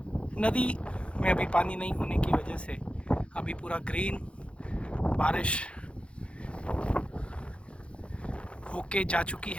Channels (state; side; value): late; right; 0.059 ms